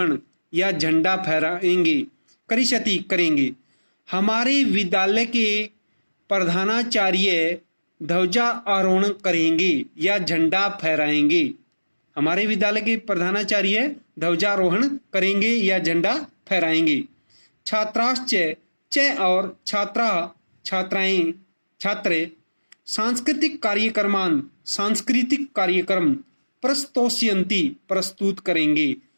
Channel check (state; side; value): inverted; both; correlation -1.00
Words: या झंडा फहराएंगे, करेंगे। हमारे विद्यालय के प्रधानाचार्य ध्वजारोहण करेंगे या झंडा फहराएंगे। हमारे विद्यालय के प्रधानाचार्य ध्वजारोहण करेंगे या झंडा फहराएंगे। छात्राश्च च और छात्र सांस्कृतिक कार्यक्रम प्रस्तुत करेंगे